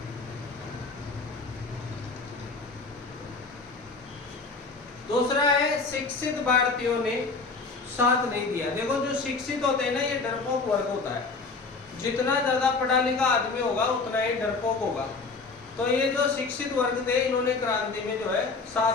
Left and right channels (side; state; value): right; quieter; 4.1 dB